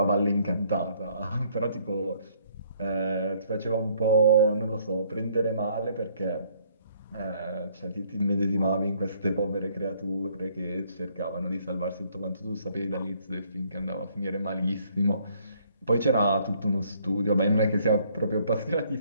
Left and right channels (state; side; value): inverted; both; correlation -0.64